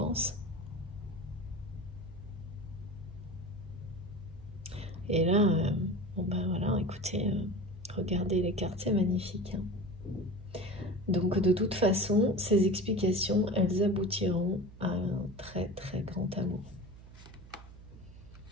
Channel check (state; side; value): noise; right; hum, 18 dB below the sound